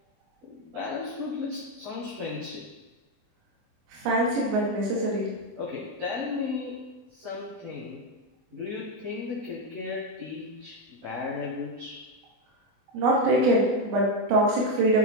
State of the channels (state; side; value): late; left; 24 ms